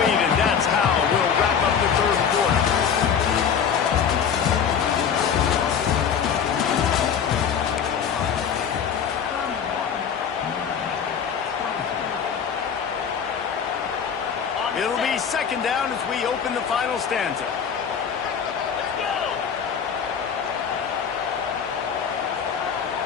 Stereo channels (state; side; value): quieter; right; 7.3 dB